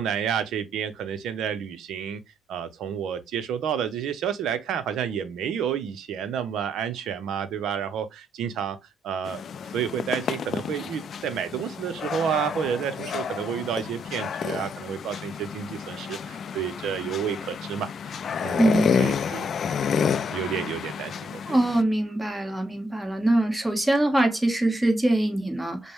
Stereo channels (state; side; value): normal; both; correlation 0.74